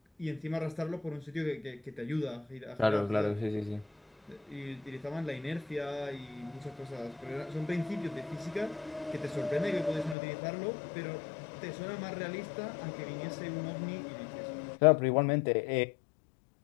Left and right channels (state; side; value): drops out; right; at 10.2 s